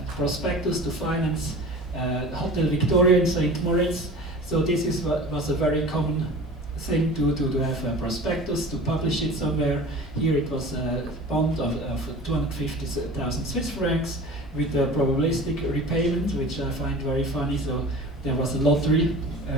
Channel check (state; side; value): normal; both; correlation 0.38